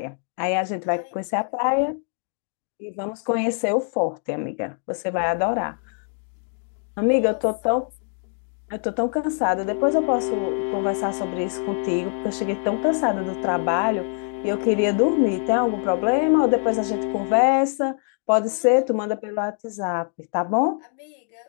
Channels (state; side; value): silent; right; 55 dB below the other